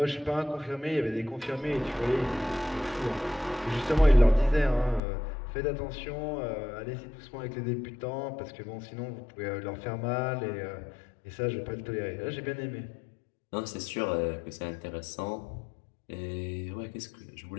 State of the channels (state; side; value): drops out; right; at 5.0 s